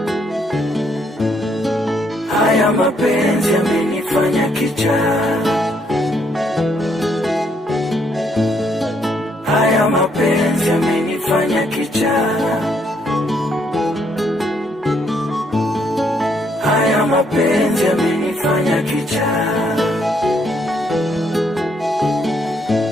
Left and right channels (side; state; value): both; normal; correlation 0.72